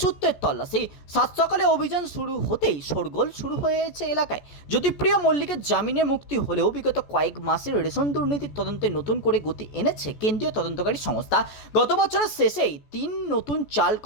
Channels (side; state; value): right; late; 14 ms